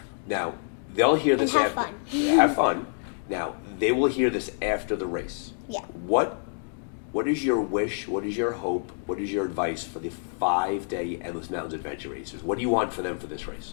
Now, they'll hear this have after. fun. Have fun. Now, they will hear this after the race. Yeah. What is your wish? What is your hope? What is your advice for the 5-day Endless Mountains Adventure Racers? What do you want for them for this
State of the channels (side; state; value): right; silent; digital silence